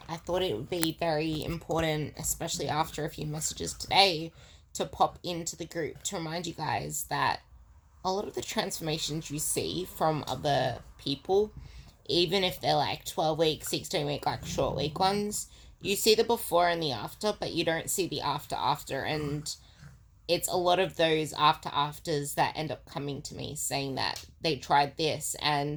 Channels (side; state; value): both; identical; correlation 1.00